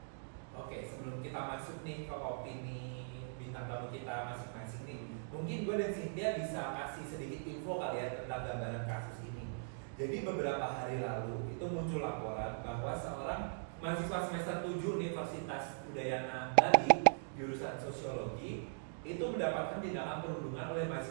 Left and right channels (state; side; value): silent; left; digital silence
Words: Oke, sebelum kita masuk nih ke opini bintang tamu kita masing-masing nih, mungkin gue dan Cynthia bisa kasih sedikit info kali ya tentang gambaran kasus ini. Jadi beberapa hari lalu itu muncul laporan bahwa seorang mahasiswa semester 7 Universitas Udayana Bali jurusan sosiologi itu mendapatkan tindakan perundungan oleh